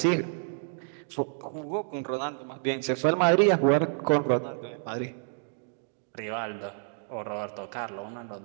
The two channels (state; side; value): silent; left; 58 dB below the other